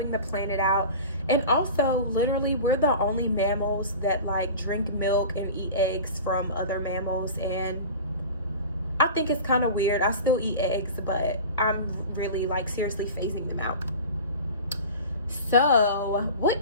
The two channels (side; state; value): both; inverted; correlation -0.35